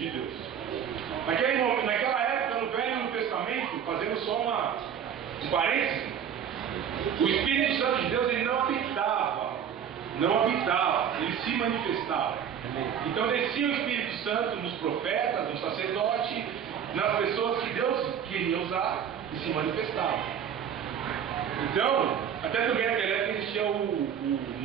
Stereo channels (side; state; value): left; quieter; 8.5 dB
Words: Deus. Naquela época, no Velho Testamento, fazendo só um parênteses, o Espírito Santo de Deus, ele não habitava, ele se manifestava. Então descia o Espírito Santo nos profetas, nos sacerdotes, nas pessoas que Deus queria usar e se manifestava. Então, até também naquela época existia o